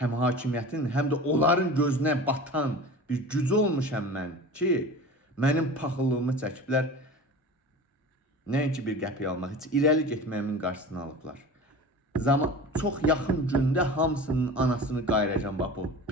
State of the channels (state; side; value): normal; both; correlation 0.35